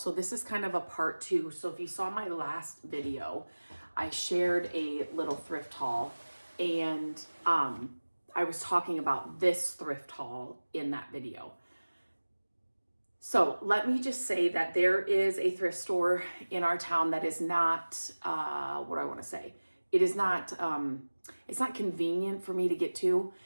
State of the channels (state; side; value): inverted; both; correlation -1.00